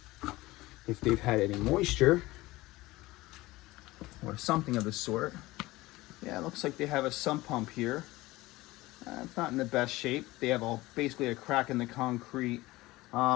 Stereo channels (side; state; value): right; quieter; 19.3 dB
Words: if they've had any moisture or something of the sort. Yeah, it looks like they have a sump pump here. It's not in the best shape. They have basically a crack in the concrete.